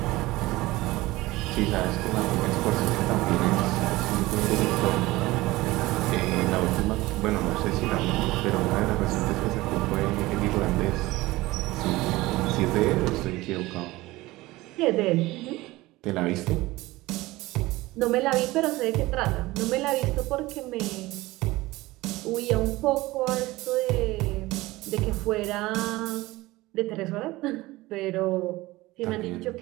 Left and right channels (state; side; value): quieter; left; 19.3 dB